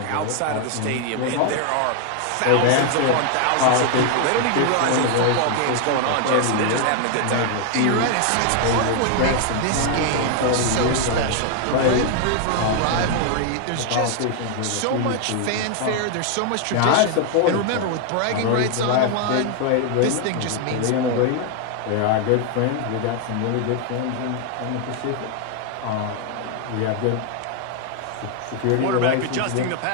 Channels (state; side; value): different; both; correlation 0.00